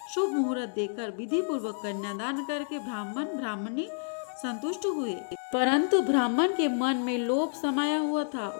शुभ मुहूर्त देकर विधि पूर्वक कन्यादान करके ब्राह्मण ब्राह्मणी संतुष्ट हुए। परंतु ब्राह्मण के मन में लोभ समाया हुआ था।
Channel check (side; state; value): right; silent; digital silence